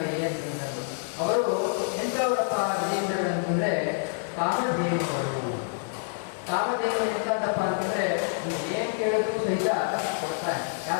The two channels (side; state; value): right; silent; digital silence